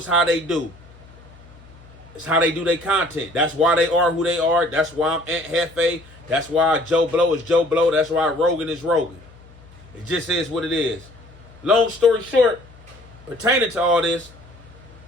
how they do. It's how they do their content. That's why they are who they are. That's why I'm Aunt Hefe. That's why Joe Blow is Joe Blow. That's why Rogan is Rogan. It just is what it is. Long story short, pertaining to all this,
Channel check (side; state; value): left; noise; hum, 23 dB below the sound